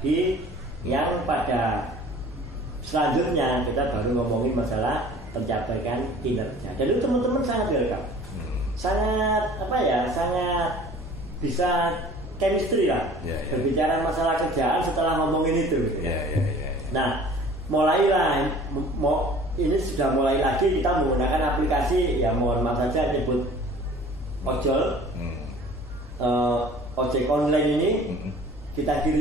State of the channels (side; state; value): both; normal; correlation 0.47